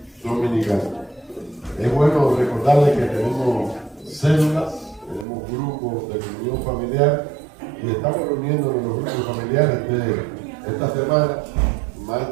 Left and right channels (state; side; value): drops out; left; at 5.2 s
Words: dominical. Es bueno recordarles que tenemos células, tenemos grupos de comunión familiar y estamos reuniéndonos en los grupos familiares de esta semana. Más